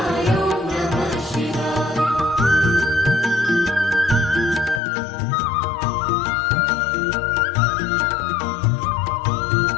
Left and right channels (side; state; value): right; drops out; at 4.8 s